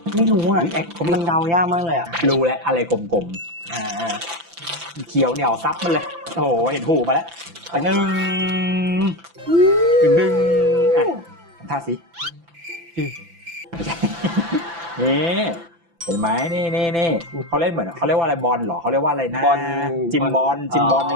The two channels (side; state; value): left; late; 5.9 ms